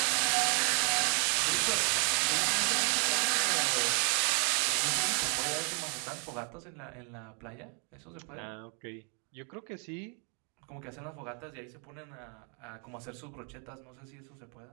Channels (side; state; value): left; quieter; 37.9 dB